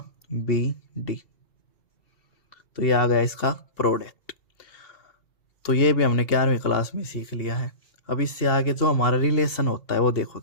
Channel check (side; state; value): right; late; 2.4 ms